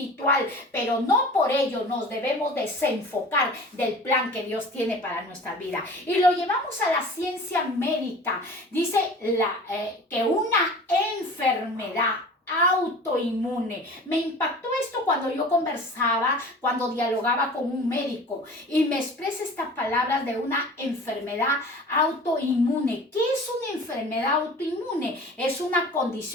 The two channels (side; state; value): both; normal; correlation 0.41